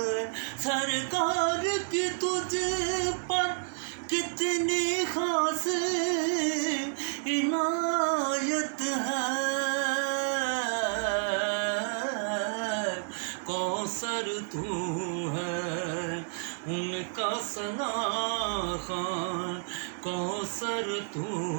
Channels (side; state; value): left; silent; digital silence